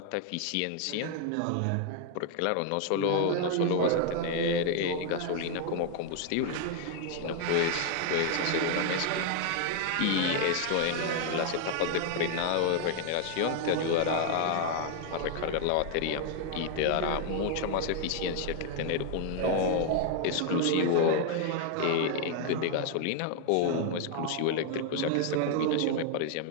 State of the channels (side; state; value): both; different; correlation 0.00